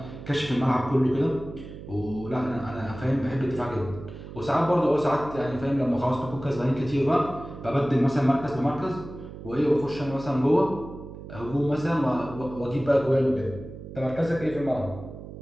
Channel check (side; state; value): right; noise; hum, 13 dB below the sound